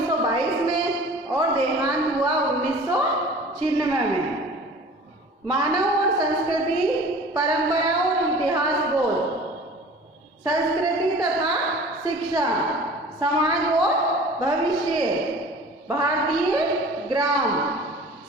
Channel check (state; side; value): normal; both; correlation 0.43